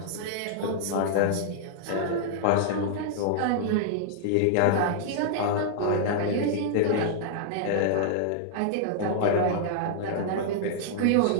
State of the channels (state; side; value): different; both; correlation -0.01